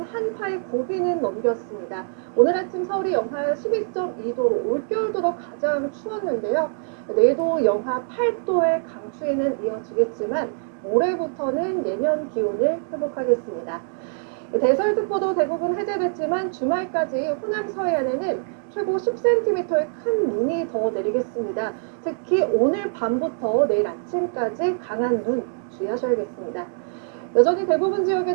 한파의 고비는 넘겼습니다. 오늘 아침 서울이 영하 12.2도로 올겨울 들어 가장 추웠는데요. 내일도 영하 8도의 강추위는 이어지겠지만 모레부터는 예년 기온을 회복하겠습니다. 대설특보도 대부분 해제됐지만 주말까지 호남 서해안에는 최고 10cm의 큰 눈이 더 내리겠습니다. 특히 오늘 밤부터 내일 아침까지 강한 눈 주의하셔야겠습니다. 여전히 대부분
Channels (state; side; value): silent; left; digital silence